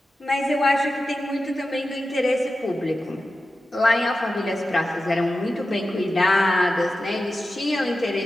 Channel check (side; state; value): both; normal; correlation 0.93